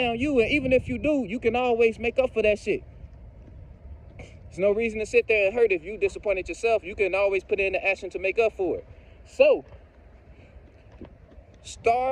you. And even if you do, you can always make up for that shit. There's no reason to sit there and hurt if you disappointed yourself. You can always put in the action to make up for it. So,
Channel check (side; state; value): both; identical; correlation 1.00